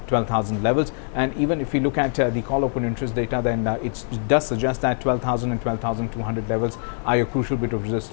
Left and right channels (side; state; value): right; silent; digital silence